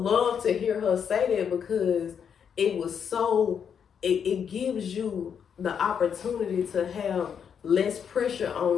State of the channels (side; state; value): right; quieter; 7.5 dB